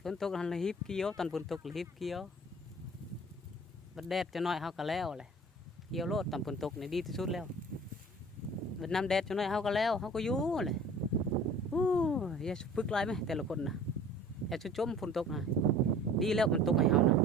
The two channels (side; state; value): both; normal; correlation 0.46